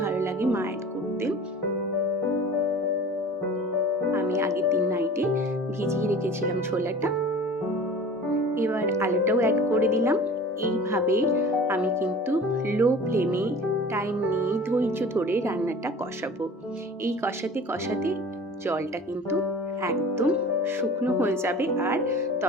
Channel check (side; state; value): both; normal; correlation 0.41